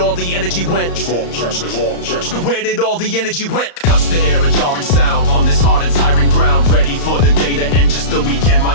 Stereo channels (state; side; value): late; right; 35 ms